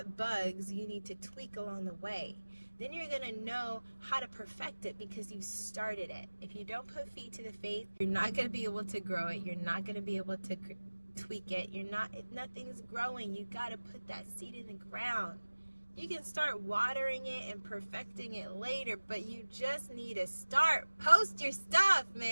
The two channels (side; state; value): both; inverted; correlation -1.00